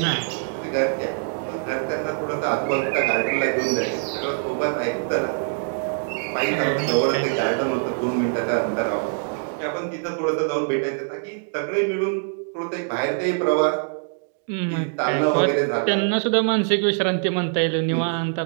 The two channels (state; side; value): silent; left; digital silence